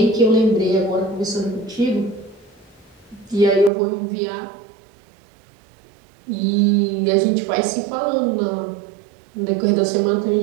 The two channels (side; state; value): left; drops out; at 3.7 s